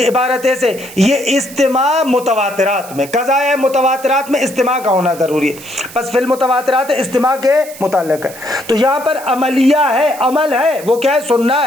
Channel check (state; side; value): noise; right; hiss, 17 dB below the sound